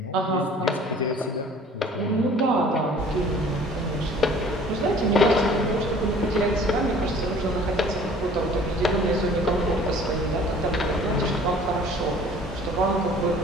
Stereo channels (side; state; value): both; normal; correlation 0.50